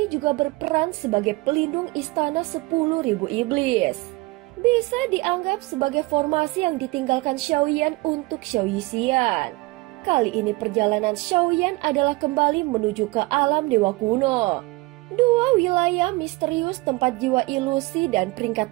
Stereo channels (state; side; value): quieter; left; 22.7 dB